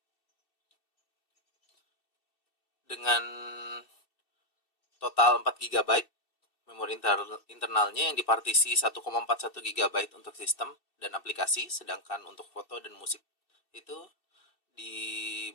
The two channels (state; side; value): late; right; 2.7 ms